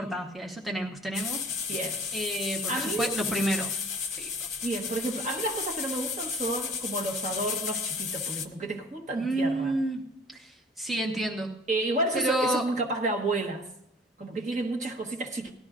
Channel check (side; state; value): both; normal; correlation 0.49